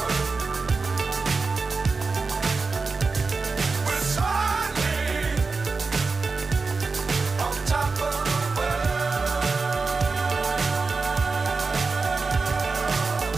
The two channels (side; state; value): left; quieter; 4.2 dB